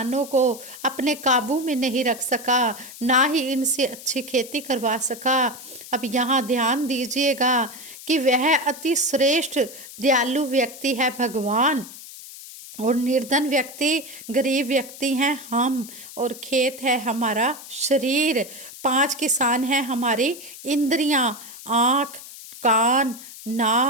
को अपने काबू में नहीं रख सका, ना ही इनसे अच्छी खेती करवा सका। अब यहाँ ध्यान दीजिएगा कि वह अति श्रेष्ठ दयालु व्यक्ति है भगवान और निर्धन व्यक्ति, गरीब व्यक्ति हैं हम, और खेत है हमारा शरीर। 5 किसान हैं हमारी इंद्रियां, आँख, कान,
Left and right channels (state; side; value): noise; left; hiss, 15 dB below the sound